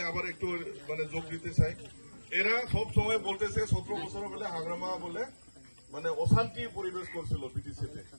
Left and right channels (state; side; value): inverted; both; correlation -1.00